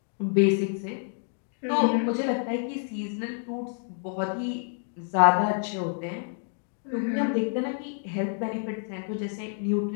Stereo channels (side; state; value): right; silent; 56 dB below the other